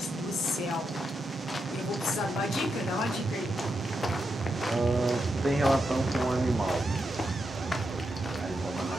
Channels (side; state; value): both; normal; correlation 0.85